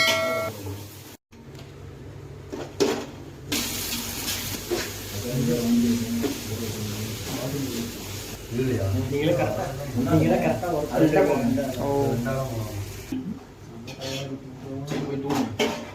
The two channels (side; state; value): both; identical; correlation 1.00